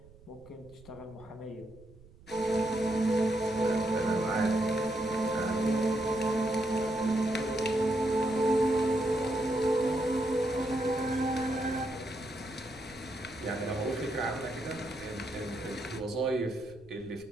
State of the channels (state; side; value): noise; right; rumble, 23 dB below the sound